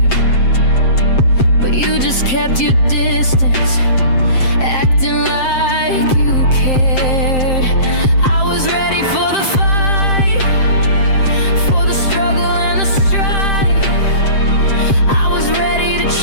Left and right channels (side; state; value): right; late; 7.6 ms